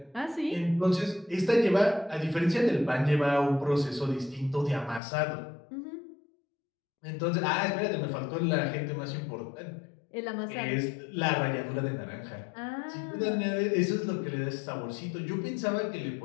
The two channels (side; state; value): right; drops out; at 5.0 s